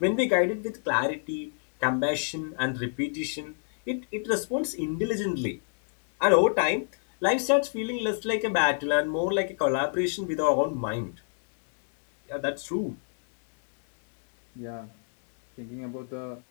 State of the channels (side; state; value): right; silent; digital silence